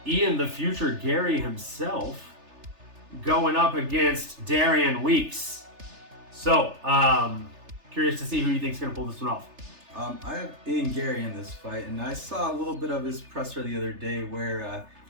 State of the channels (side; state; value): left; late; 3.3 ms